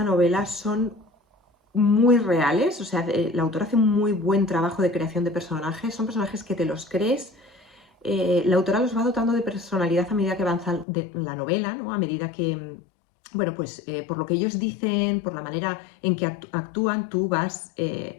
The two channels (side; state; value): right; drops out; at 10.9 s